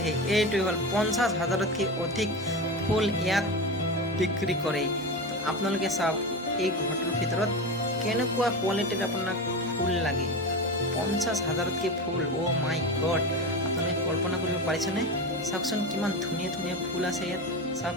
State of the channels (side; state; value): both; normal; correlation 0.23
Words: এইটোৱে হ'ল 50,000তকৈ অধিক ফুল ইয়াত বিক্ৰী কৰে আপোনালোকে চাওক এই ঘৰটোৰ ভিতৰত কেনেকুৱা কোৱালিটিৰ আপোনাক ফুল লাগে 50,000তকৈ ফুল মাই গড আপোনালোকে কল্পনা কৰিব পাৰিছেনে চাওকচোন কিমান ধুনীয়া ধুনীয়া ফুল আছে ইয়াত চাওক